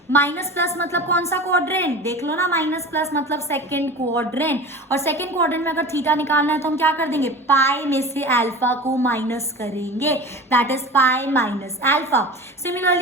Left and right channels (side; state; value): both; normal; correlation 0.34